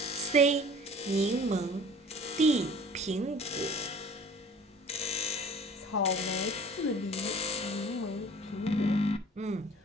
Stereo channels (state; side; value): normal; both; correlation 0.47